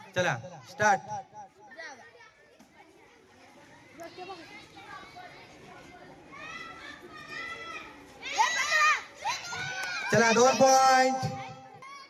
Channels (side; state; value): both; identical; correlation 1.00